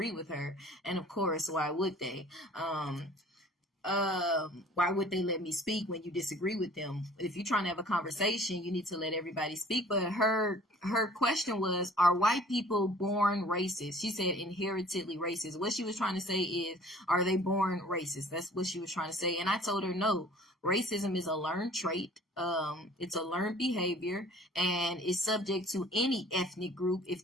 with her. And of course, why would they? Why would they let me speak when you disagree with them? If you're trying to have a conversation, you need to let everybody speak. But her question was, are white people born racist? She said inheritedly racist. What she was trying to say is, are they born racist? That's what she was trying to say. And I told her no. Racism is a learned trait. It's a learned behavior, and is subject to any ethnic group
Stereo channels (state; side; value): normal; both; correlation 0.50